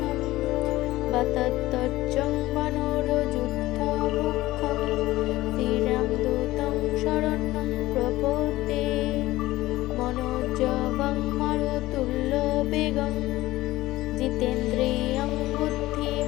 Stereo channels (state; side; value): quieter; right; 17.4 dB